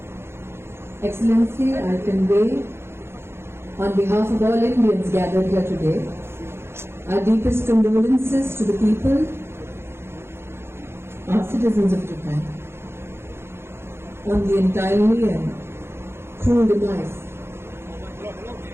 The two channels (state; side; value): late; left; 0.12 ms